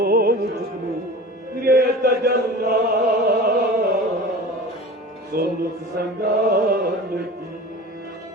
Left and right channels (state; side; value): normal; both; correlation 0.37